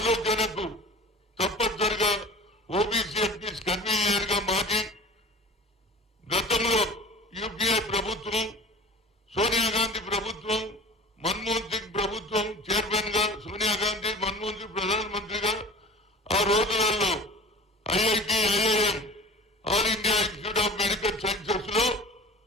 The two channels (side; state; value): both; normal; correlation 0.40